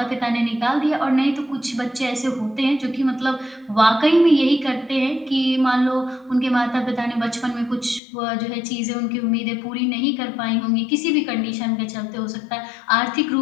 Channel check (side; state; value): right; drops out; at 8.0 s